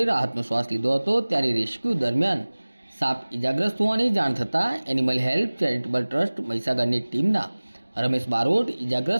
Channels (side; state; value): both; inverted; correlation -1.00